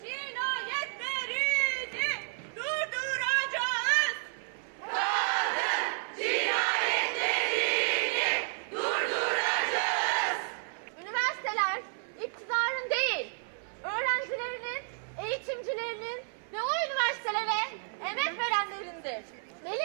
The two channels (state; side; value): silent; left; 57 dB below the other